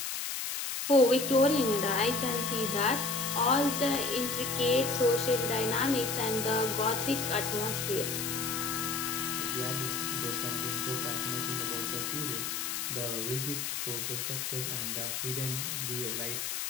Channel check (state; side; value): noise; left; hiss, 3 dB below the sound